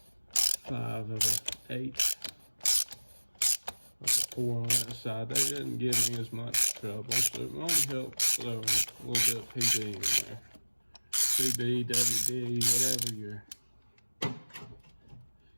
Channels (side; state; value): both; inverted; correlation -1.00